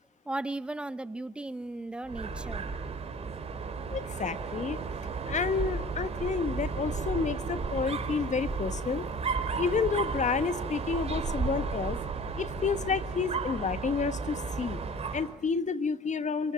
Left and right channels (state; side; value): normal; both; correlation 0.46